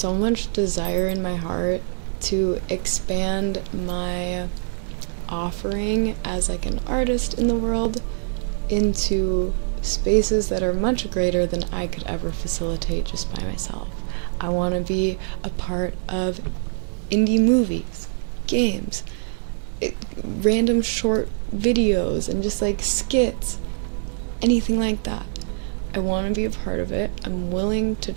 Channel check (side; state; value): left; silent; digital silence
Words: much desire in my heart to expand my offering as like an artist in the world into spaces that are much greater than I could ever facilitate just by myself. I want to be a part of indie movies, games, random short videos, and just like skits, anything like that. I want to be a part of it. I'm willing to